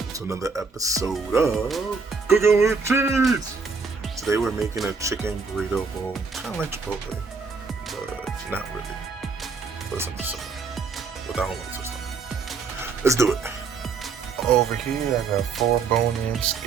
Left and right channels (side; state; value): left; quieter; 4.8 dB